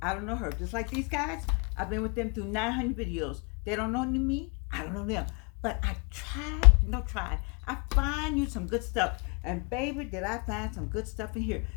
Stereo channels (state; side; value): quieter; right; 35.6 dB